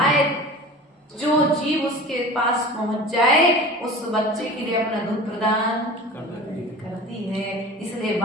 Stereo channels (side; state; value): both; normal; correlation 0.37